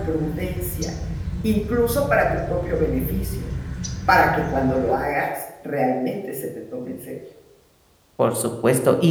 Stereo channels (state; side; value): identical; both; correlation 1.00